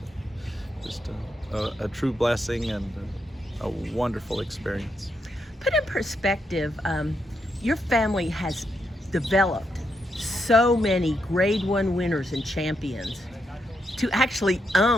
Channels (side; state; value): both; normal; correlation 0.81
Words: just a true blessing and a wonderful experience. Put in perspective, your family has developed so many Grade 1 winners and champions to actually